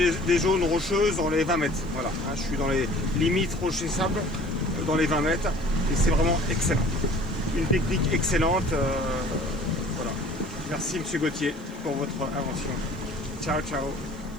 des zones rocheuses dans les 20 mètres, voilà, hein, je suis dans les limites rocher sable, dans les 20 mètres, et c'est vraiment excellent, une technique excellente, voilà, merci monsieur Gauthier pour votre invention, ciao ciao.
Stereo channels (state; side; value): noise; left; hiss, 30 dB below the sound